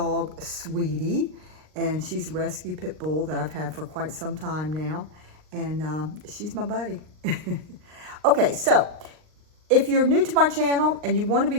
Sweetie, and she's a rescue pit bull that I've had for quite some time now, and she's my buddy. Okay, so if you're new to my channel and you want to be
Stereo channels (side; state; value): left; late; 39 ms